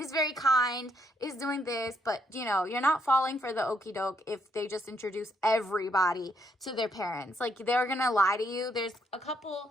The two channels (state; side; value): normal; both; correlation 0.74